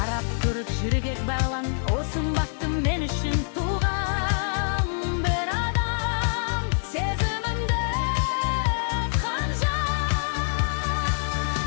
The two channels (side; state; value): right; silent; 61 dB below the other